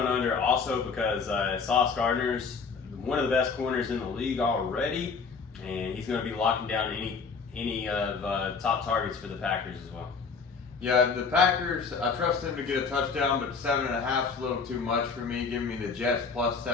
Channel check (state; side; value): quieter; right; 5.2 dB